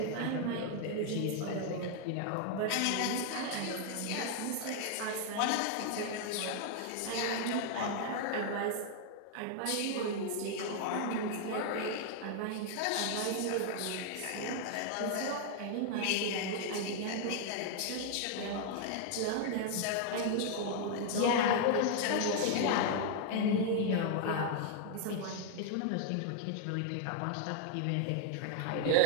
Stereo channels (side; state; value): both; different; correlation 0.00